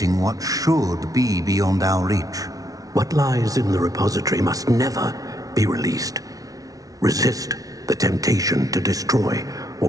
what should be beyond our reach. What lies in the repository must never be released. Resist the temptation to destroy or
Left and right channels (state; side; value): late; left; 0.18 ms